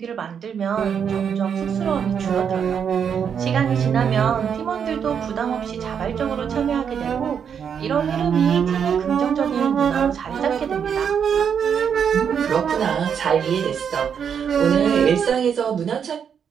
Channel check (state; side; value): quieter; left; 7.5 dB